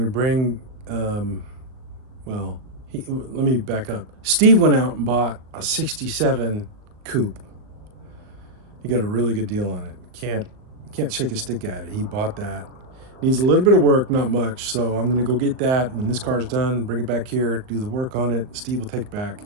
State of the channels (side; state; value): left; late; 39 ms